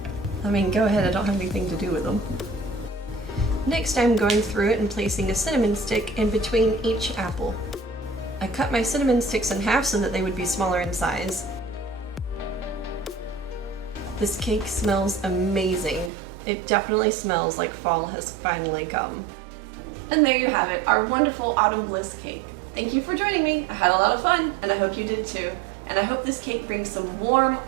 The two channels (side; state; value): left; drops out; at 16.1 s